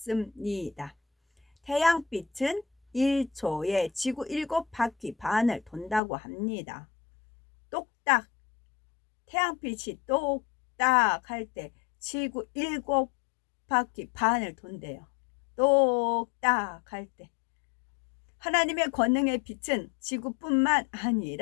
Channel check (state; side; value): drops out; right; at 6.0 s